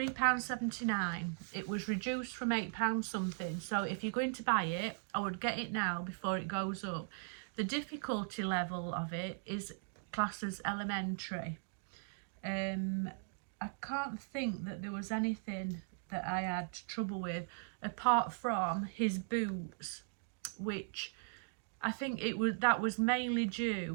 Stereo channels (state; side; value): silent; left; digital silence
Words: It was reduced from £8 something, so if you're going to buy it, I would get it now before it goes up. The difficulty level of it is classed as elementary. I can't think that there was anything that I had trouble with apart from his boots, which I think that was mainly